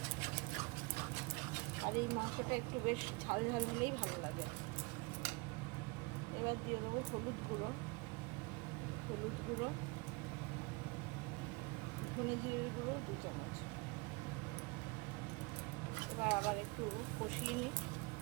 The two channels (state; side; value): quieter; left; 26.8 dB